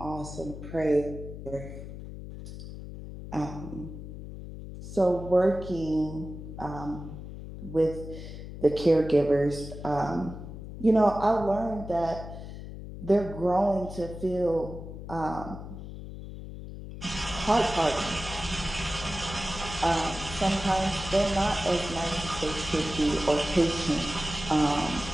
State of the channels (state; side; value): noise; left; hum, 11 dB below the sound